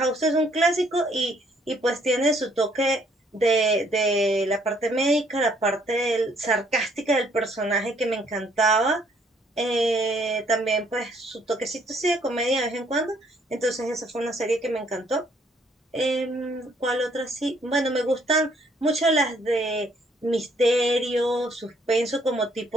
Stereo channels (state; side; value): normal; both; correlation 0.66